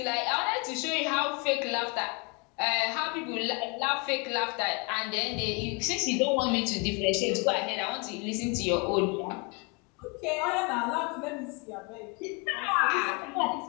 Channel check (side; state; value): right; quieter; 31.5 dB